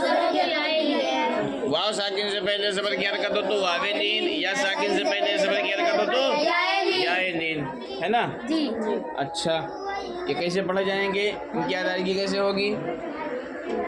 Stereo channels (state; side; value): identical; both; correlation 1.00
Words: واو ساکن سے پہلے زبر کی حرکت ہو تو واو لین، یا ساکن سے پہلے زبر کی حرکت ہو تو یا لین، ہے نا؟ اچھا، یہ کیسے پڑھے جائیں گے؟ ان کی ادائیگی کیسے ہوگی؟